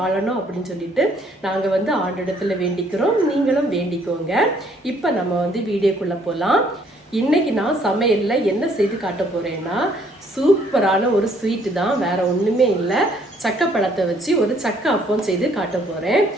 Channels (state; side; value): normal; both; correlation 0.64